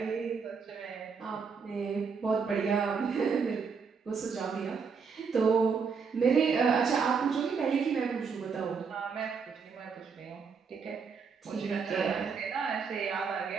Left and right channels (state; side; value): quieter; left; 5.7 dB